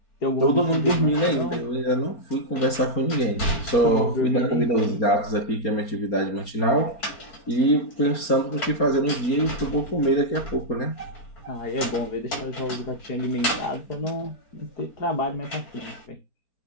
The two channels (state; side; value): late; right; 4.3 ms